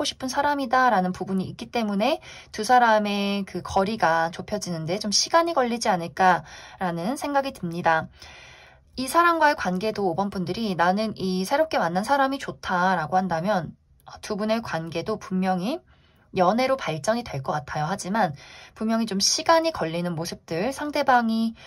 싶은 사람이다 라는 부분이 있기 때문에 두 사람의 그 거리가 좁혀지는데 좀 시간이 걸리지 않을까라는 생각이 듭니다. 이 사람과의 관계도 5번 분들이 나는 이 새롭게 만난 사람이 좋다라고 한다면 두 분의 관계도 분명히 연애로 발전이 될 것 같아요. 하지만 분명히 좀 시간이 걸리는 모습들, 상대방이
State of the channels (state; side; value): identical; both; correlation 1.00